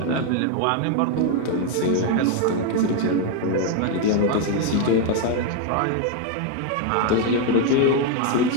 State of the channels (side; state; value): both; different; correlation 0.01